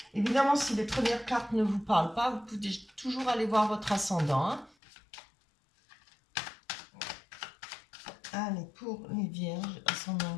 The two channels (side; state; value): right; drops out; at 4.8 s